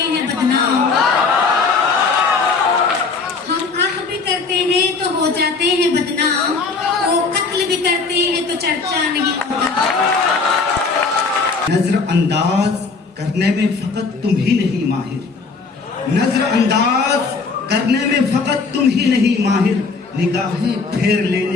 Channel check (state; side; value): quieter; right; 4.5 dB